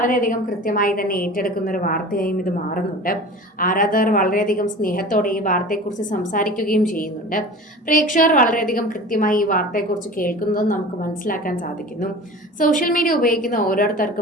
കൃത്യമായി തന്നെ ഏറ്റെടുക്കുന്ന ഒരു വാർത്തയായും ഇത് മാറുന്നുണ്ട്. ആരാധകർ വളരെയധികം സ്നേഹത്തോടെ ഈ വാർത്തയെക്കുറിച്ച് സംസാരിക്കുകയും ചെയ്യുന്നുണ്ട്. പ്രേക്ഷകർ വളരെയധികം കൃത്യമായി ഈ വാർത്തയെക്കുറിച്ച് കേൾക്കുന്നതും നമുക്ക് മനസ്സിലാക്കാൻ സാധിക്കുന്നു. സോഷ്യൽ മീഡിയ ഉപയോഗിക്കുന്ന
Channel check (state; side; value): normal; both; correlation 0.37